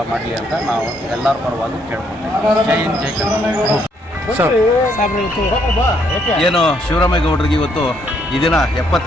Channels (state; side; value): normal; both; correlation 0.71